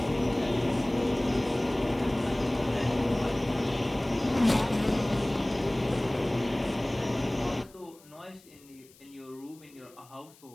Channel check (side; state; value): left; noise; hiss, 26 dB below the sound